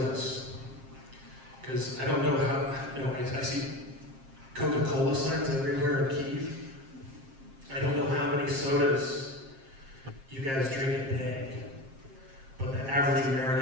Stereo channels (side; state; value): left; late; 7.5 ms